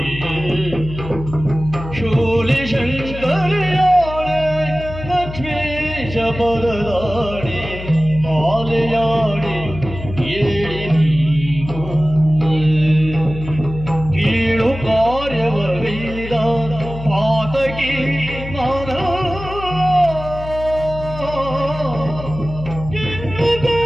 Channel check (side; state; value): left; noise; hum, 11 dB below the sound